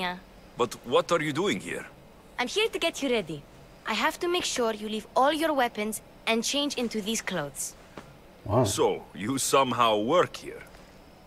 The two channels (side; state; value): both; identical; correlation 1.00